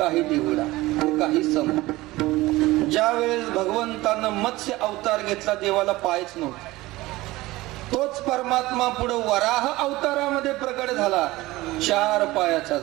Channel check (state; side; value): quieter; left; 19.0 dB